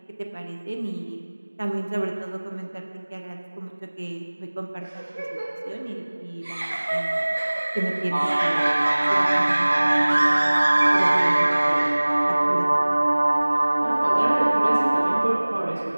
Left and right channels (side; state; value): both; inverted; correlation -1.00